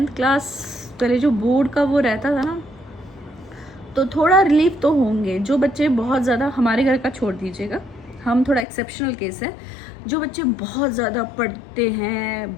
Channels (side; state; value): right; drops out; at 8.7 s